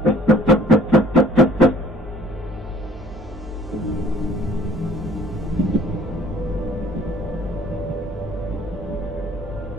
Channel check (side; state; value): both; normal; correlation 0.55